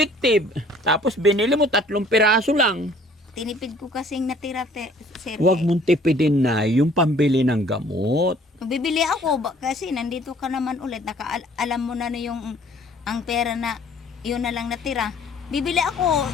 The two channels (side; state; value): both; normal; correlation 0.55